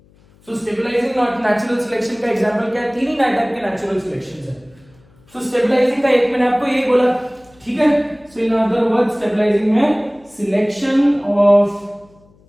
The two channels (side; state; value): left; noise; hum, 30 dB below the sound